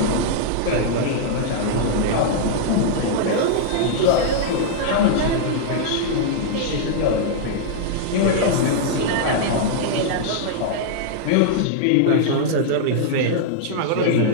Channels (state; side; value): different; both; correlation -0.01